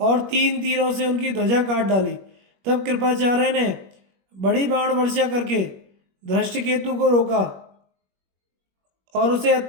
3 तीरों से उनकी ध्वजा काट डाली। तब कृपाचार्य ने बड़ी बाण वर्षा करके धृष्टकेतु को रोका और उसे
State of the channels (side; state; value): left; late; 21 ms